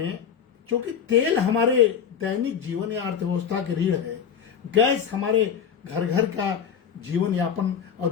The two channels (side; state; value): right; quieter; 7.7 dB